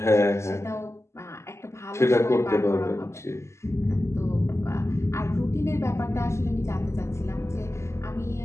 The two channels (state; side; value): late; right; 0.13 ms